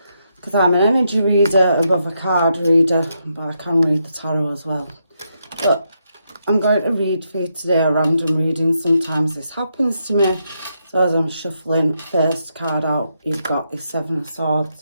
because I'm an energy reader above a card reader, but I can read the tarot as well. But I'm going to read for you today a random reading. Sometimes this happens to me. So as I'm shuffling first card out, you've got the Seven of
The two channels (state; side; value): inverted; both; correlation -0.80